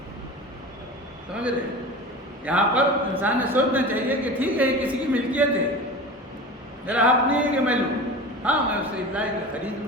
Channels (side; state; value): both; normal; correlation 0.32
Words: سمجھ رہے؟ یہاں پر انسان نے سوچنا چاہیے کہ ٹھیک ہے یہ کسی کی ملکیت ہے، میرا حق نہیں ہے کہ میں لوں، ہاں میں اسے لائی کے خرید